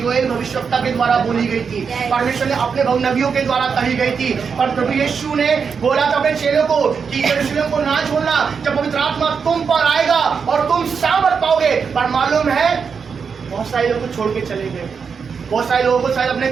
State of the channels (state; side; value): quieter; left; 6.0 dB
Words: भविष्यवक्ता के द्वारा बोली गई थी, परमेश्वर ने अपने नबियों के द्वारा कही गई थी। और प्रभु यीशु ने बोला था अपने चेलों को कि यरूशलेम को ना छोड़ना, जब पवित्र आत्मा तुम पर आएगा और तुम सामर्थ पाओगे। पर मालूम है बहुत सारे लोग को छोड़ के चले गए, बहुत सारे लोगों को शायद अपने